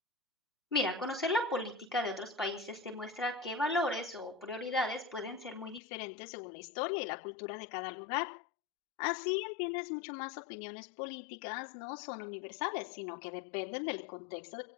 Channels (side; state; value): right; drops out; at 5.8 s